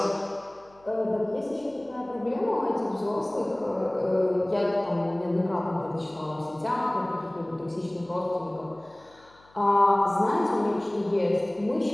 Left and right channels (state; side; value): noise; left; hum, 30 dB below the sound